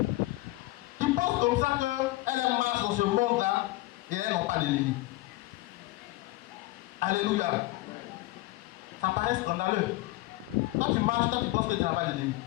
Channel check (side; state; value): right; quieter; 19.0 dB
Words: qui pensent comme ça qu'elles marchent dans ce monde-là et elles n'ont pas d'ennemis. Alléluia. Ça paraît scandaleux. Quand tu marches, quand tu penses que tu n'as pas d'ennemis,